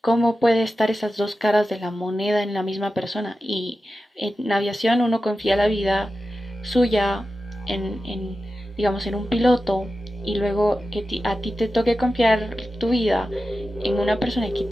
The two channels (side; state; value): both; normal; correlation 0.93